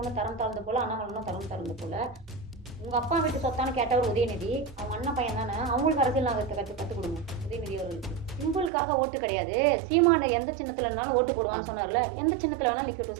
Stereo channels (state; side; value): drops out; left; at 8.7 s